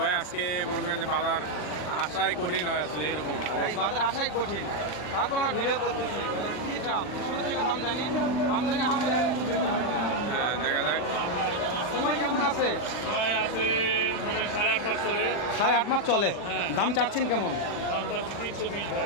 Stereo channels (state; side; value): late; right; 40 ms